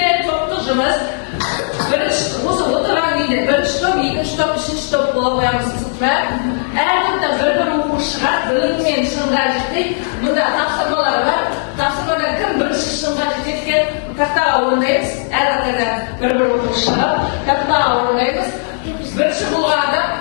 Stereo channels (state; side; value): silent; right; 69 dB below the other